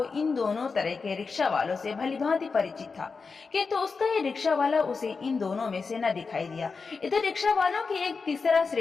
इन दोनों तरह के रिक्शा वालों से भलीभांति परिचित था, किंतु उसका ये रिक्शा वाला उसे इन दोनों में से न दिखाई दिया। इधर रिक्शा वालों की एक तीसरा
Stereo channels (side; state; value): right; quieter; 4.7 dB